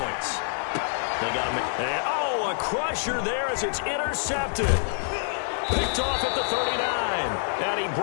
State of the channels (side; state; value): right; silent; digital silence